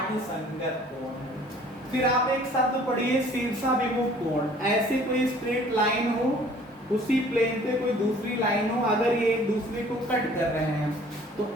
संगत कोण है। फिर आप एक शब्द पढ़िए शीर्षाभिमुख कोण। ऐसे कोई स्ट्रेट लाइन हो, उसी प्लेन पे कोई दूसरी लाइन हो, अगर ये एक दूसरे को कट कर रहे हैं तो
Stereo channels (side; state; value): both; normal; correlation 0.53